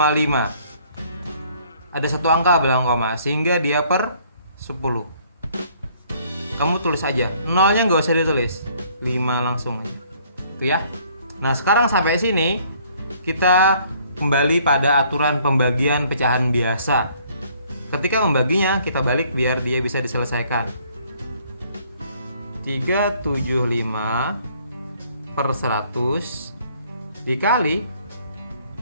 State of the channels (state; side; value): inverted; both; correlation -0.61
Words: Ada 1 angka belakang koma, sehingga dia per 10. Kamu tulis aja. Nolnya nggak usah ditulis. 5 langsung aja. Itu ya. Nah, sekarang sampai sini kita kembali pada aturan pembagian pecahan biasa. Ketika membaginya, kita balik biar dia bisa diselesaikan. 375 per 100 dikali